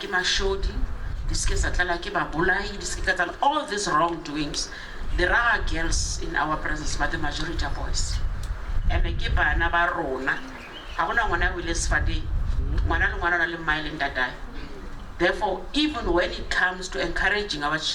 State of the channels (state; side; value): identical; both; correlation 1.00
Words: mashodi, all these wrongdoings. There are girls in our presence, but the majority are boys. And I keep another rona. I want to will fadi. Therefore, even when it comes to encouraging our